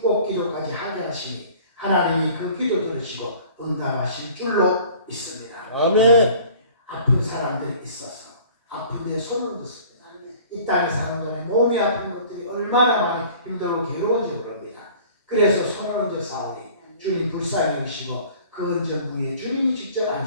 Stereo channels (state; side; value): inverted; both; correlation -0.49